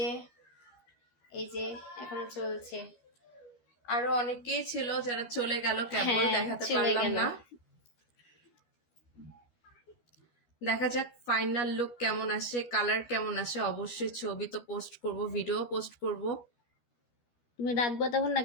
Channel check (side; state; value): right; late; 12 ms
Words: যে এখনো চলছে। আরো অনেকেই ছিল যারা চলে গেল, কেবল হ্যাঁ, দেখাতে চলে পারলাম গেল। না। দেখা যাক ফাইনাল লুক কেমন আসে, কালার কেমন আসে। অবশ্যই ছবি তো পোস্ট করব, ভিডিও পোস্ট করব, তুমি রাখবো তখন না